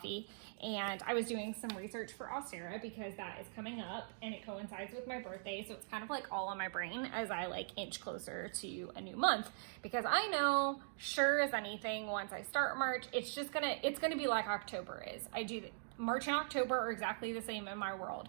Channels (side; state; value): left; silent; digital silence